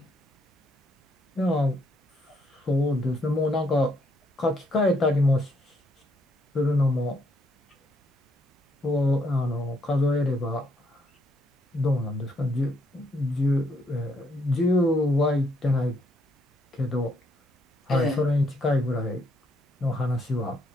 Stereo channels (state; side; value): normal; both; correlation 0.72